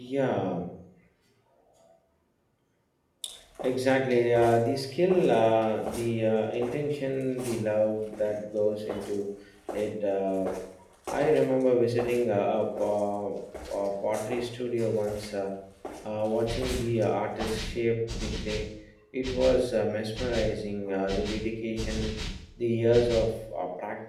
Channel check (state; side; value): identical; both; correlation 1.00